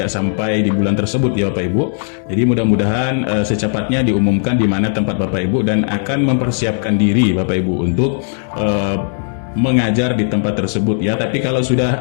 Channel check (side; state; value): right; silent; digital silence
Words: sampai di bulan tersebut ya Bapak Ibu. Jadi mudah-mudahan secepatnya diumumkan di mana tempat Bapak Ibu dan akan mempersiapkan diri Bapak Ibu untuk mengajar di tempat tersebut ya. Tapi kalau sudah